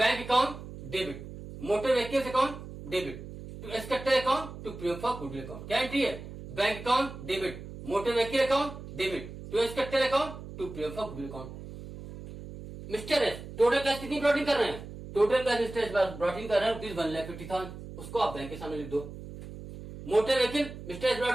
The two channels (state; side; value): noise; right; hum, 12 dB below the sound